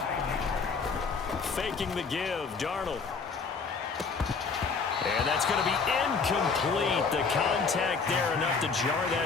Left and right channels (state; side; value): quieter; right; 5.0 dB